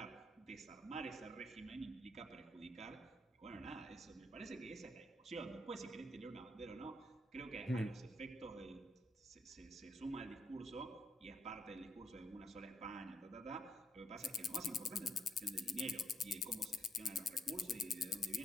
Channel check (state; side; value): normal; both; correlation 0.75